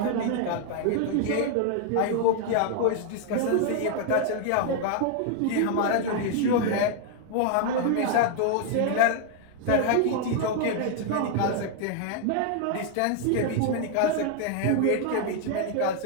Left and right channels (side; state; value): both; different; correlation 0.00